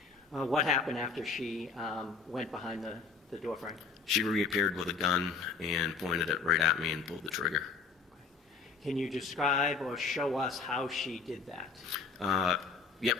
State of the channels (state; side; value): quieter; right; 4.9 dB